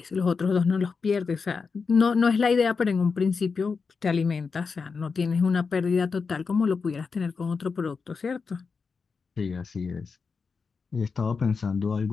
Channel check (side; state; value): right; quieter; 5.0 dB